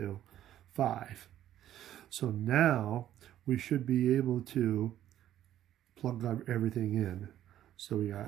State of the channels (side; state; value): left; quieter; 11.9 dB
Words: 5. So now we should be able to plug everything in. So we